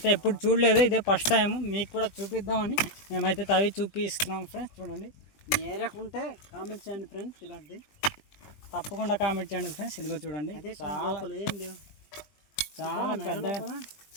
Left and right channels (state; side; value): late; right; 20 ms